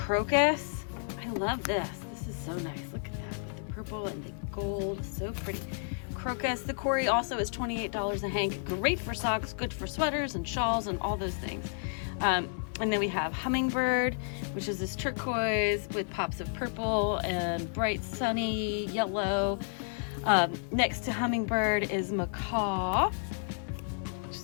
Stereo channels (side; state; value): right; silent; digital silence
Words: I love this. This is so nice. Look at that with the purple and the gold. So pretty. Crocus. The Cory also is $28 a hank. Great for socks, good for sweaters and shawls and all those things. And then we have hummingbird, which is this turquoise with pops of purple and bright sunny yellow. Next to hummingbird is macaw, which